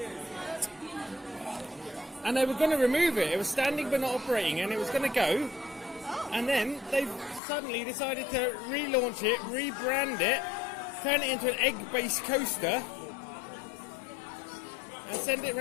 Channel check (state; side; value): drops out; right; at 7.4 s